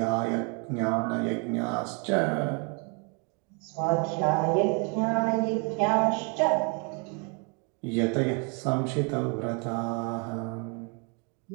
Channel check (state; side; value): quieter; left; 35.1 dB